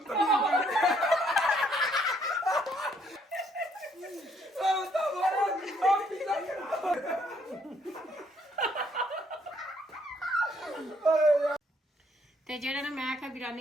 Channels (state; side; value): normal; both; correlation 0.68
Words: तो ਤੇ ਜਿਹੜਾ ਨਾ ਮੈਂ ਕਿਹਾ